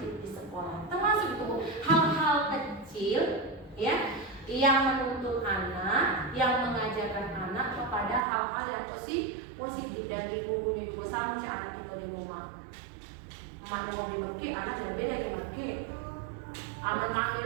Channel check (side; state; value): left; drops out; at 8.2 s